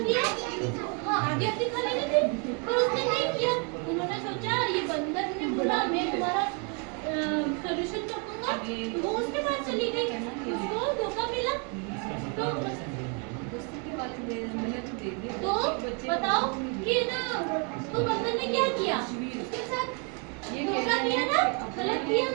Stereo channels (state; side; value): quieter; left; 35.4 dB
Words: हाँ आधी खा लेनी थी, पर उसने नहीं किया। उन्होंने सोचा ये बंदर ने बोला मैं तुम्हारा सॉल्यूशन कर दूंगा, वो उसके पास चली गई, उसको धोखा मिला। तो बताओ कि ना, तो बंदर ने क्या किया, उसके साथ धोखा किया ना, गलत किया